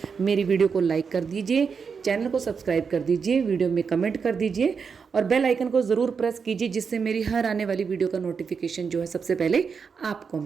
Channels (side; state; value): left; quieter; 5.8 dB